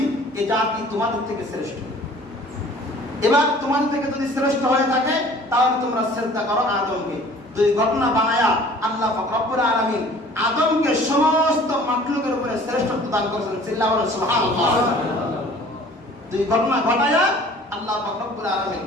এই জাতি তোমাদের থেকে শ্রেষ্ঠ। এবার তোমাদের থেকে যদি শ্রেষ্ঠ হয়ে থাকে তাহলে তোমরা সিজদা করো আদমকে। দুই ঘটনা বানায়া আল্লাহ পাক রব্বুল আলামিন আদমকে সমস্ত মাখলুকের উপরে শ্রেষ্ঠত্ব দান করেছেন। চিল্লায়া বলেন সুবহানাল্লাহ। দুই ঘটনা ঘটায়া আল্লাহ পাক রব্বুল আলামিন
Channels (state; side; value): normal; both; correlation 0.50